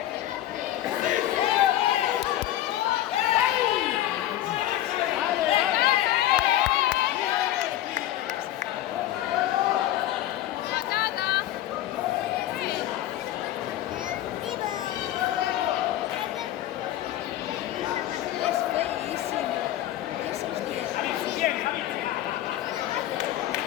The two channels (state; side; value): quieter; right; 13.4 dB